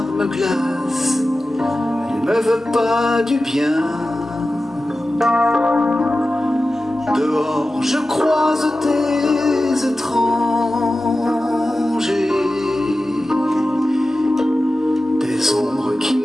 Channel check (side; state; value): both; normal; correlation 0.95